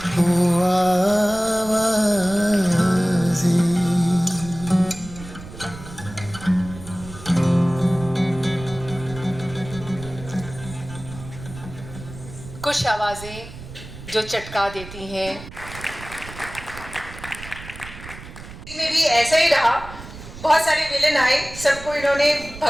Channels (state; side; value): noise; right; rumble, 14 dB below the sound